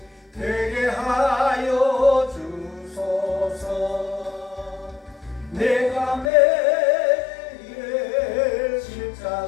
되게 하여 주소서 내가 매일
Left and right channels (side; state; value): right; drops out; at 6.3 s